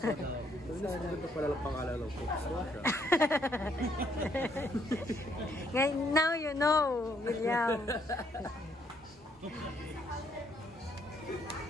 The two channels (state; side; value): normal; both; correlation 0.70